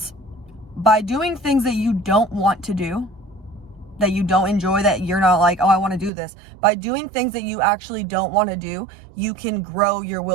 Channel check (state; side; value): drops out; left; at 6.1 s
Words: by doing things that you don't want to do, that you don't enjoy, that you're not like, oh, I want to do this. By doing things that you actually don't want to do, you can grow your